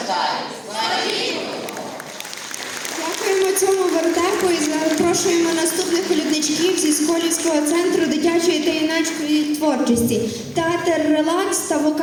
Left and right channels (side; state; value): both; identical; correlation 1.00